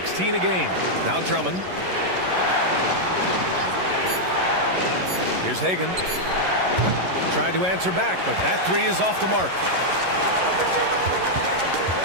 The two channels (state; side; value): late; left; 11 ms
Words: a game. Now Drummond. Here's Hagan. Tried to answer back, but that 3 is off the mark.